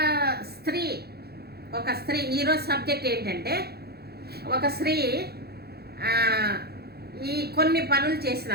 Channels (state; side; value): late; left; 0.46 ms